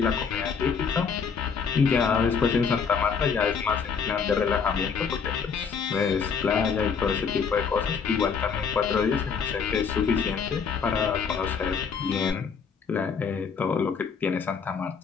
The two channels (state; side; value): quieter; right; 6.1 dB